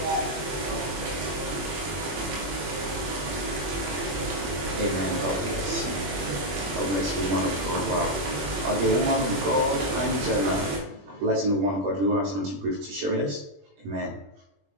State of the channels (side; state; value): left; late; 21 ms